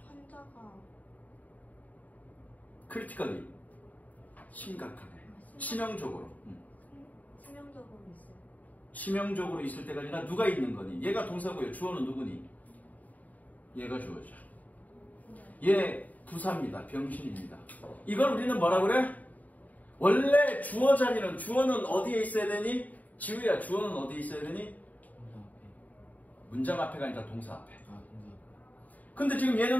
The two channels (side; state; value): right; late; 0.075 ms